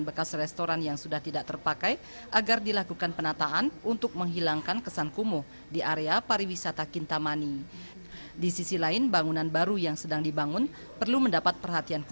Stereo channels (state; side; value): inverted; both; correlation -1.00